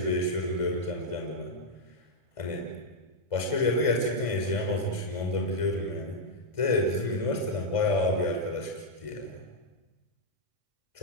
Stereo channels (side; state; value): right; late; 1.5 ms